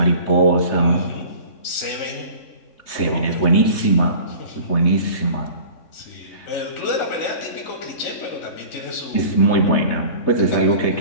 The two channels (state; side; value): late; right; 3.6 ms